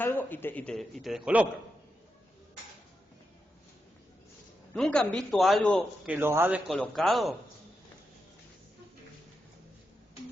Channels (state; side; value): normal; both; correlation 0.86